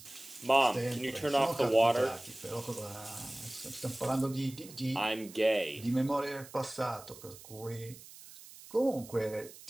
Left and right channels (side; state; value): right; noise; hiss, 18 dB below the sound